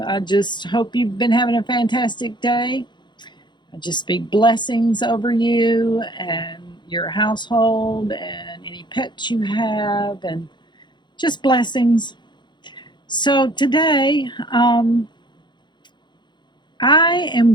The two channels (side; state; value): right; late; 0.22 ms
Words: just hope you've been having a fantastic day. I just speak blessings over you and your household and any pets you have, and just blessings. So today, I